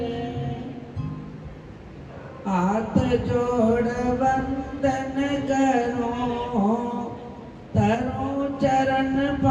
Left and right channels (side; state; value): both; identical; correlation 1.00